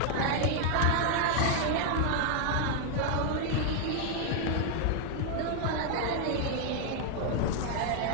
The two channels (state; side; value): different; both; correlation 0.00